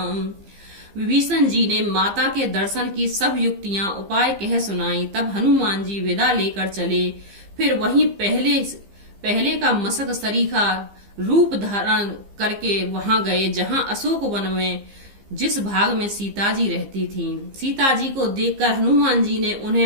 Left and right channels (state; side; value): late; left; 15 ms